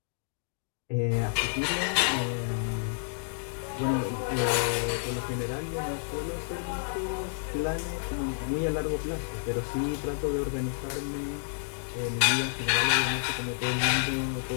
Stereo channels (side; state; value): right; silent; digital silence